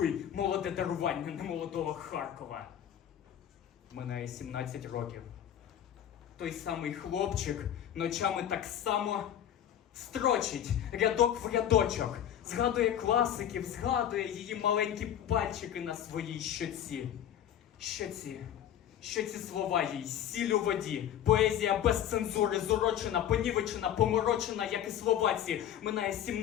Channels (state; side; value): quieter; right; 10.3 dB